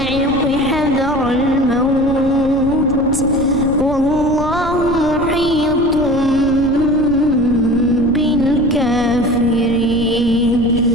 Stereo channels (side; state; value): left; noise; rumble, 11 dB below the sound